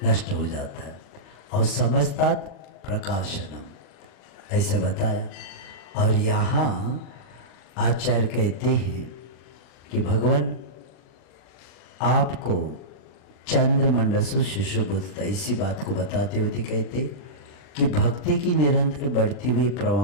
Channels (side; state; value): right; late; 40 ms